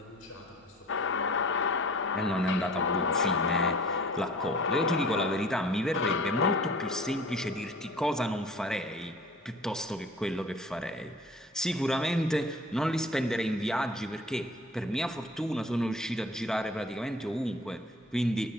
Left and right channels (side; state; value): both; normal; correlation 0.46